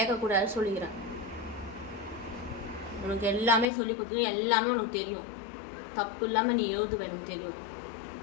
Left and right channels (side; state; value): right; drops out; at 3.7 s